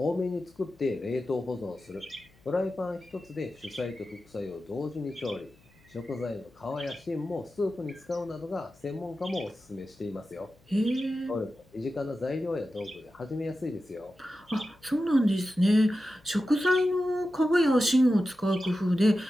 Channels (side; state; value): left; noise; hum, 30 dB below the sound